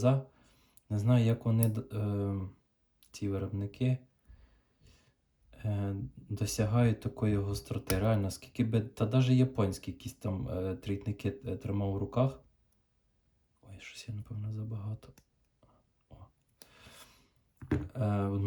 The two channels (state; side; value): identical; both; correlation 1.00